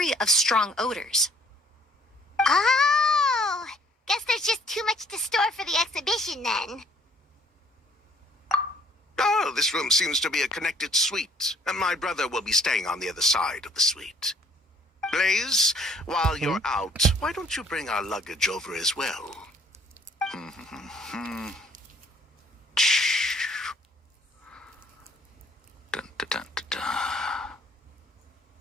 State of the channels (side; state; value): both; normal; correlation 0.59